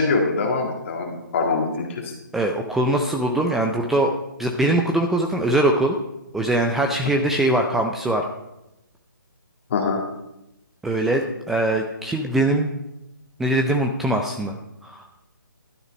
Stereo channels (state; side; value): normal; both; correlation 0.21